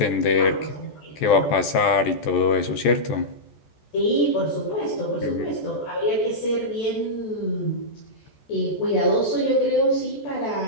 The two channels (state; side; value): late; right; 14 ms